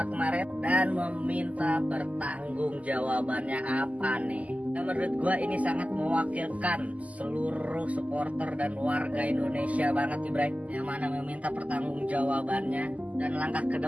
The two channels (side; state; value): left; late; 0.072 ms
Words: kemarin, dan meminta pertanggung jawabannya apa nih. Dan menurut gue ini sangat mewakilkan seluruh supporter dan warga Indonesia banget nih Bray, yang mana meminta pertanggung jawabannya dan langkah ke